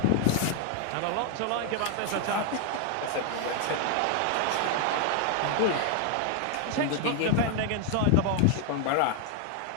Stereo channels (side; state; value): both; different; correlation 0.00